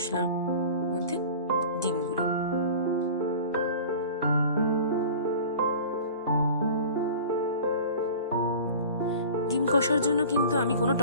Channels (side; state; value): both; inverted; correlation -0.40